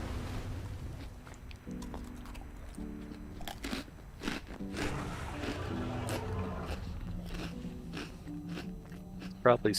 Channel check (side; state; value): both; identical; correlation 1.00